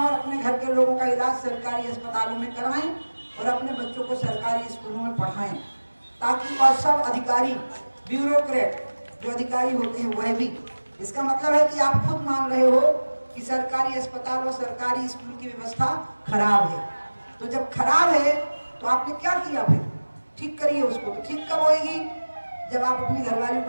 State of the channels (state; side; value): inverted; both; correlation -1.00